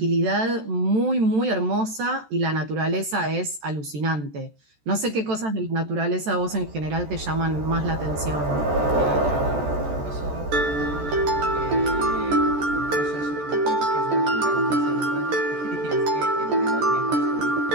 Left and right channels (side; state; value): left; late; 14 ms